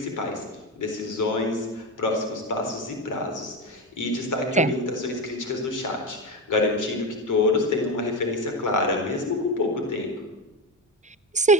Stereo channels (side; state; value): both; normal; correlation 0.16